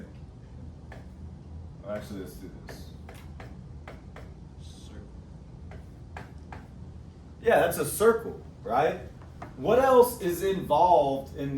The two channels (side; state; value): both; identical; correlation 1.00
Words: Well, actually, let's do this. Yeah, that's a circle, right? What else is involved in